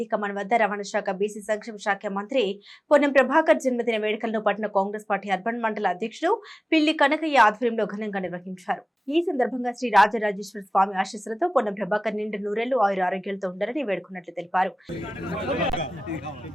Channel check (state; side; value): normal; both; correlation 0.97